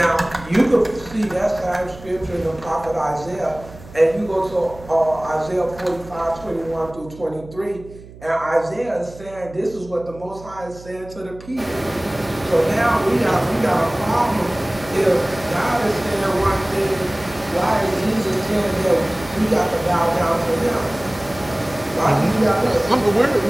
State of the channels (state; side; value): noise; right; hum, 18 dB below the sound